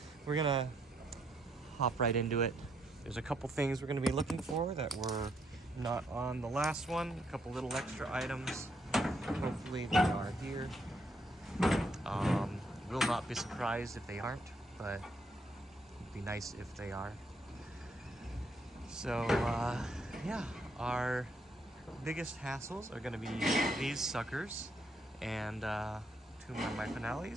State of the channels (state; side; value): normal; both; correlation 0.74